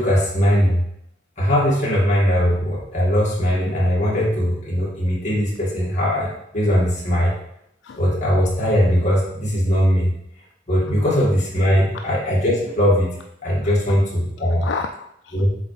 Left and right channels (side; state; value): both; normal; correlation 0.74